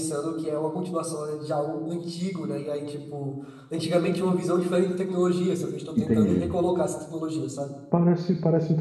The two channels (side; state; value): both; identical; correlation 1.00